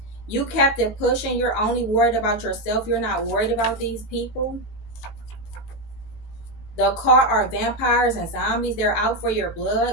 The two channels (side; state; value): right; late; 18 ms